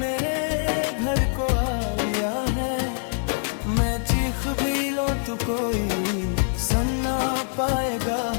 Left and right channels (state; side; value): silent; right; digital silence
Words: घर को आ लिया है। मैं चीख भी लो तो कोई सुन ना पाएगा,